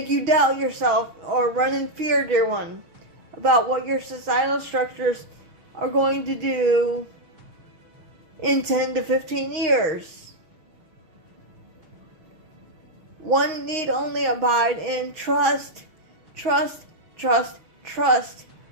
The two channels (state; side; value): late; left; 6.3 ms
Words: you doubt yourself or run in fear, dear one, about what your societal structures are going to do in 10 to 15 years. One need only abide in trust, trust, trust, trust.